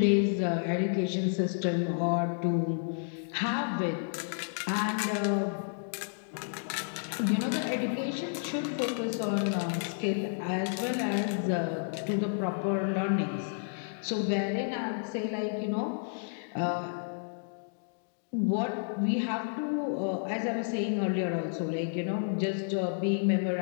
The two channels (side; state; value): right; silent; digital silence